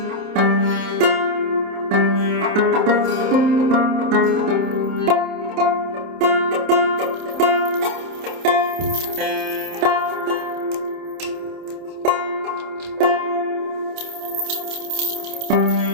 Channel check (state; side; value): late; left; 27 ms